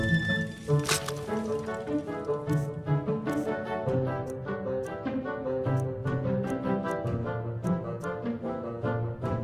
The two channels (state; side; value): identical; both; correlation 1.00